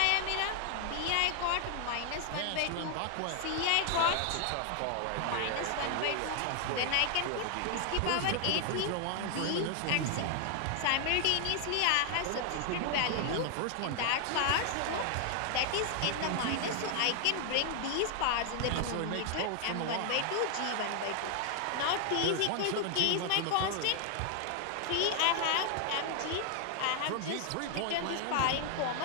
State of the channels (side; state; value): both; different; correlation 0.00